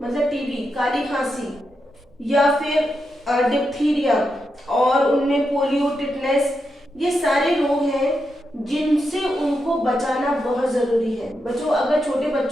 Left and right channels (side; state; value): both; normal; correlation 0.85